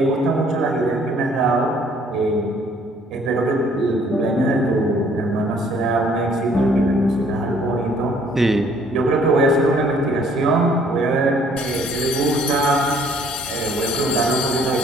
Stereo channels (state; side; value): normal; both; correlation 0.60